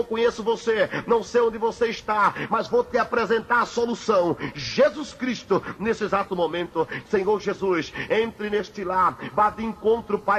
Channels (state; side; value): identical; both; correlation 1.00